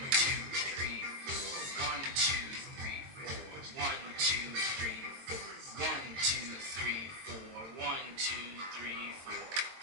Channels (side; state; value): left; late; 22 ms